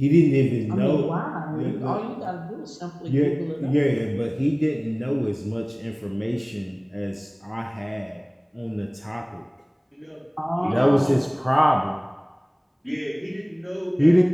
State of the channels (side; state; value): both; identical; correlation 1.00